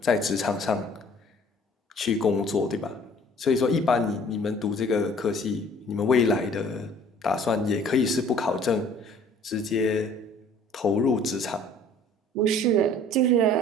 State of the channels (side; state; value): both; normal; correlation 0.53